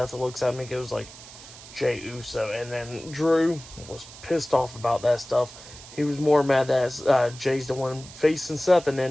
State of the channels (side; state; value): right; noise; hiss, 17 dB below the sound